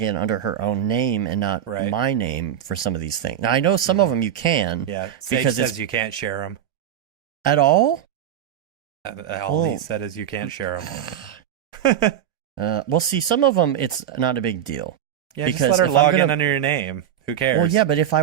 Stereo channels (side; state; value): left; quieter; 10.1 dB